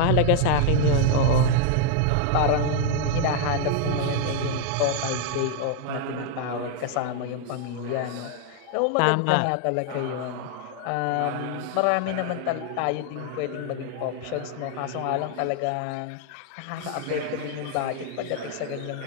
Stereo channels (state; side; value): different; both; correlation 0.00